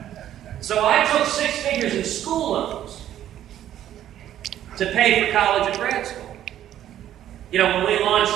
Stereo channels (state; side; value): quieter; left; 11.6 dB